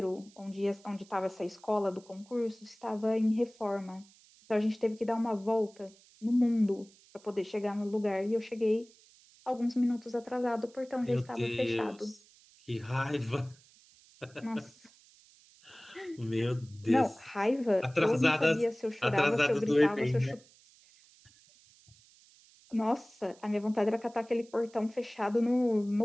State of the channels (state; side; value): noise; right; hiss, 27 dB below the sound